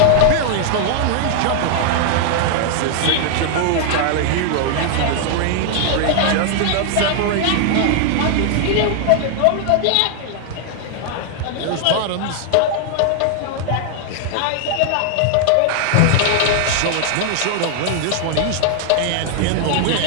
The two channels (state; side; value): different; both; correlation 0.00